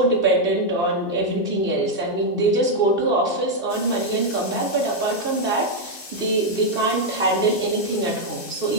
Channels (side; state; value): right; late; 4.4 ms